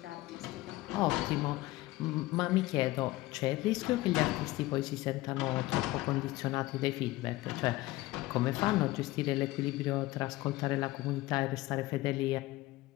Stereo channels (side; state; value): right; quieter; 18.6 dB